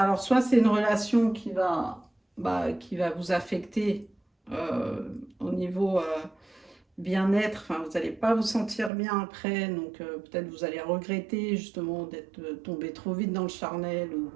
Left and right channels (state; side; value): drops out; left; at 8.9 s